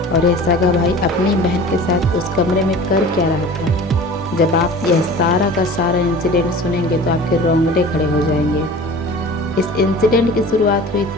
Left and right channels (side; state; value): both; normal; correlation 0.40